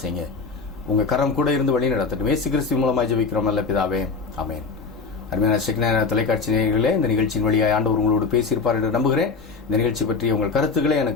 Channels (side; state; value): right; quieter; 4.5 dB